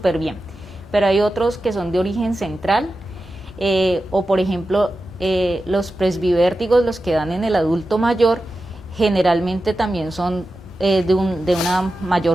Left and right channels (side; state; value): both; normal; correlation 0.92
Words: bien. Pero hay otros que son de origen central, o por ejemplo, los presbivértigos, los que dan en el adulto mayor, generalmente también son de una